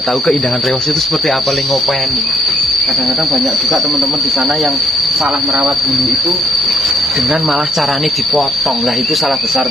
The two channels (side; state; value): both; normal; correlation 0.69